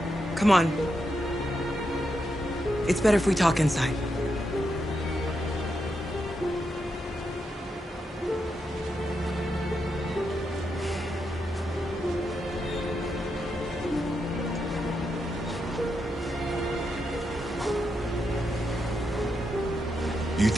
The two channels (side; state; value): both; normal; correlation 0.84